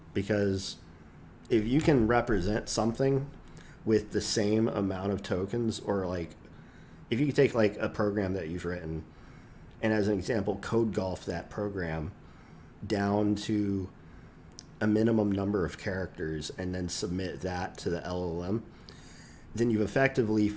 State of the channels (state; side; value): identical; both; correlation 1.00